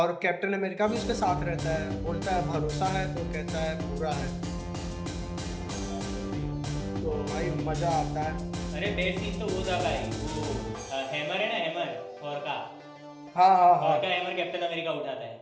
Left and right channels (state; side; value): identical; both; correlation 1.00